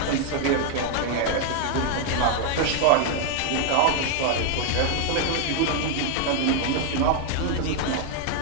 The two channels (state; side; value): different; both; correlation 0.00